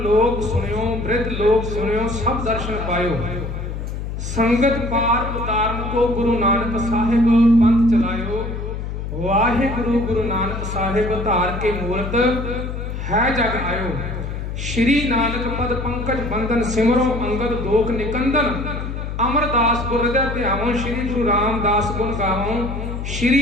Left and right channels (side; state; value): left; noise; hum, 5 dB below the sound